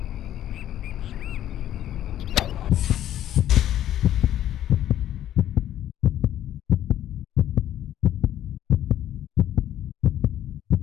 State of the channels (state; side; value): quieter; right; 11.8 dB